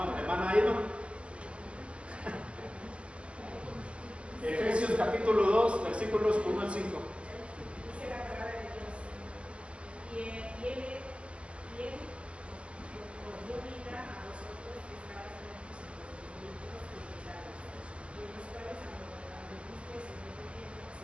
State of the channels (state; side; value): late; left; 0.055 ms